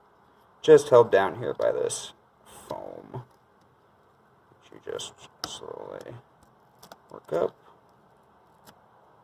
just held down here by this foam, which you just slowly work up.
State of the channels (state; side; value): identical; both; correlation 1.00